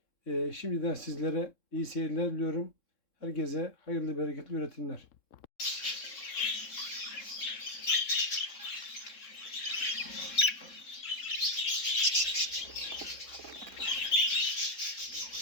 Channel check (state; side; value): late; right; 3.7 ms